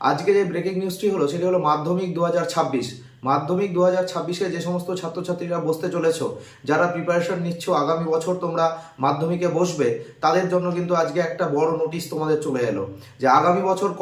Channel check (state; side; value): identical; both; correlation 1.00